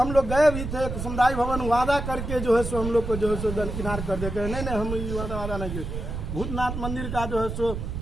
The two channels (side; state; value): right; noise; rumble, 5 dB below the sound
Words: लोग गए भी थे समुदाय भवन, वादा करके जो है सो हम लोग को जो है सो दरकिनार कर देते हैं, नहीं हम ये वादा नहीं किए। भूतनाथ मंदिर का जो है सो